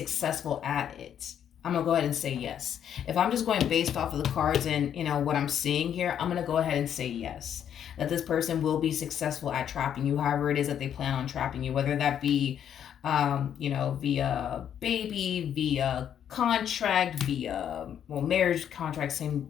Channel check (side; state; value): right; quieter; 9.3 dB